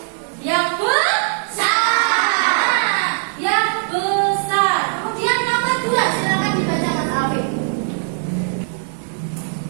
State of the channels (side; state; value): left; silent; digital silence